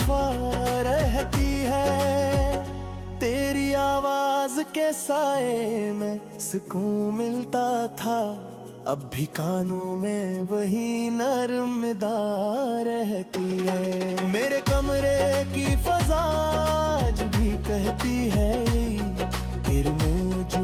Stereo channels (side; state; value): both; identical; correlation 1.00